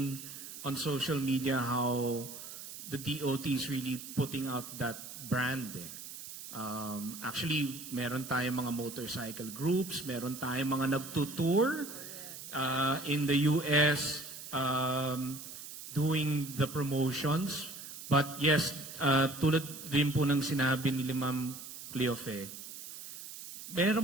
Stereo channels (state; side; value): noise; right; hiss, 11 dB below the sound